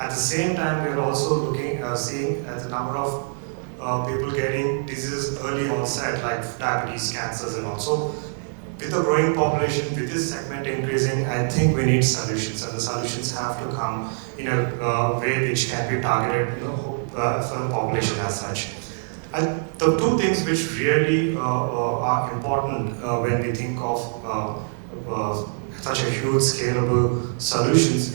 the same time, we are also seeing at the number of people getting diseases early onset, like diabetes, cancers, and also with the growing population, with this segment increasing, I think we need solutions, and the solutions have to come in a way which can be targeted, for the population as such. The two things which really are important when we think of such a huge scalable solutions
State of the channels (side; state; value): left; silent; 63 dB below the other